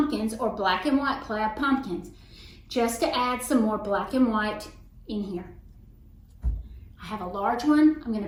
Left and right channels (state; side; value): identical; both; correlation 1.00